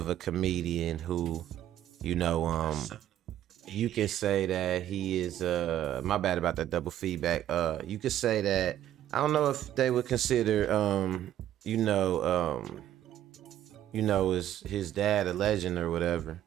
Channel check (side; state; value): left; quieter; 11.9 dB